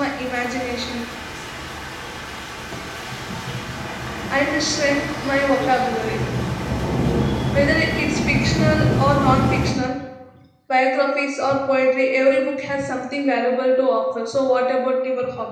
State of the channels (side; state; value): both; identical; correlation 1.00